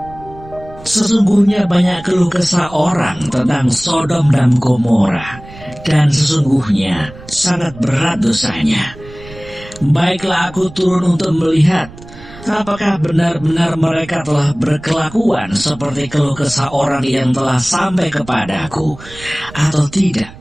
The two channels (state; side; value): noise; right; rumble, 18 dB below the sound